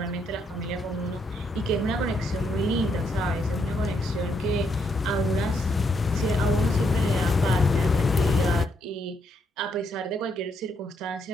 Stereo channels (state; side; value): normal; both; correlation 0.76